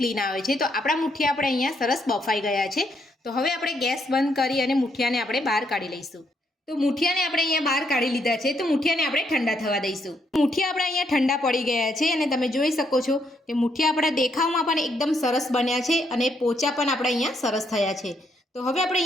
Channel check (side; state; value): both; normal; correlation 0.75